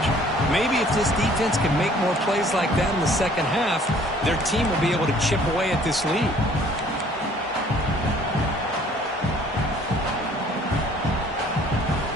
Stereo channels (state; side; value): normal; both; correlation 0.56